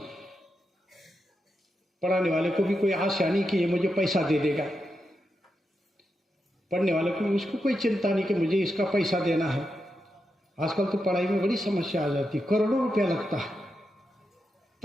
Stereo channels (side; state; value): both; normal; correlation 0.86